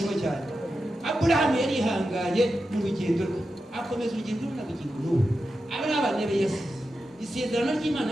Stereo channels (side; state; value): both; normal; correlation 0.90